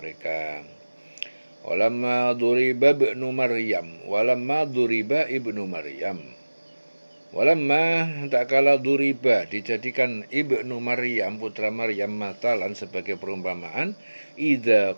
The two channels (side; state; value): both; inverted; correlation -1.00